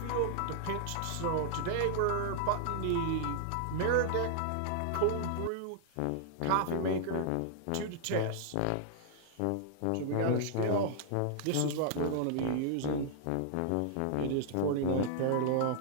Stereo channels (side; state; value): both; different; correlation -0.01